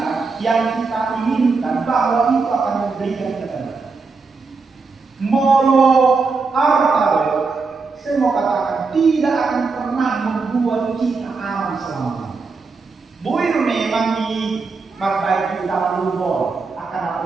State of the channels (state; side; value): quieter; left; 4.4 dB